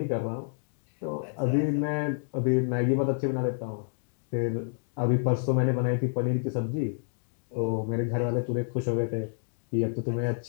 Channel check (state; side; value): silent; right; digital silence